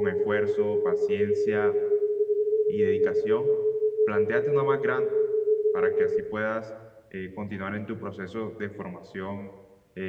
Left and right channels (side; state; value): both; identical; correlation 1.00